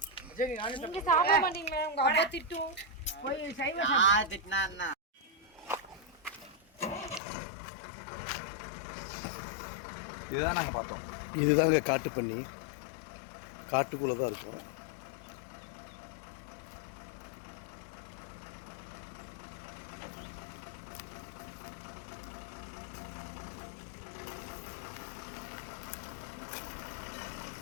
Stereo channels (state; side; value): drops out; right; at 7.2 s